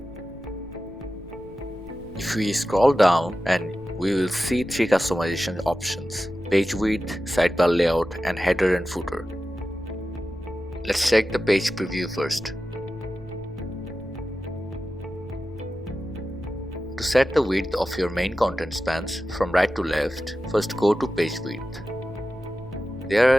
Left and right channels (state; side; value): noise; left; rumble, 18 dB below the sound